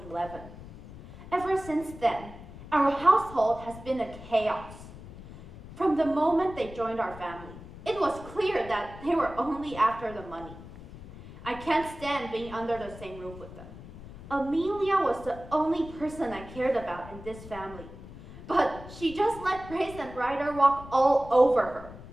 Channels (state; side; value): noise; left; rumble, 15 dB below the sound